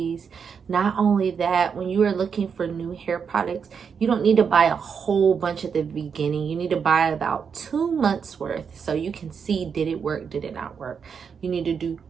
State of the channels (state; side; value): quieter; left; 6.5 dB